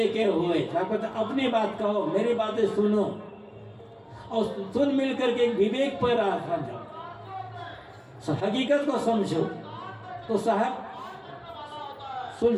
के हुए। अपनी बात कहो, मेरी बातें सुनो, और सुन मिल करके एक विवेक पर आ जाओ, हकीकत को समझो। तो साहब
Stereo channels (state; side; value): identical; both; correlation 1.00